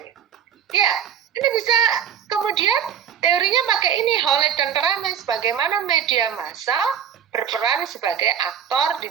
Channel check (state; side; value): quieter; left; 8.5 dB